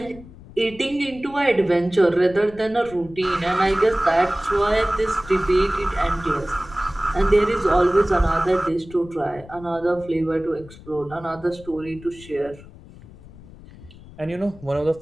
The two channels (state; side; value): noise; left; rumble, 19 dB below the sound